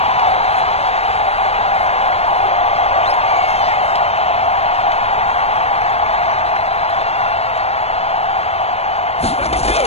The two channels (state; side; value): late; right; 0.30 ms